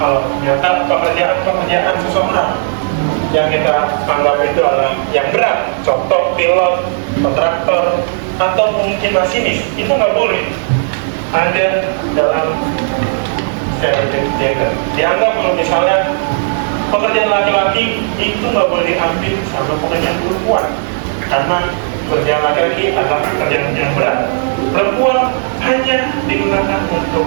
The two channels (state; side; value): silent; left; digital silence